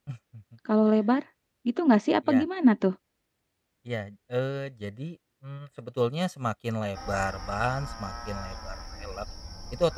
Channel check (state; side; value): identical; both; correlation 1.00